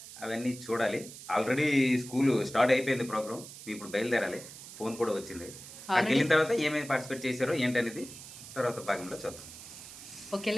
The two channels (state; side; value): noise; right; hiss, 14 dB below the sound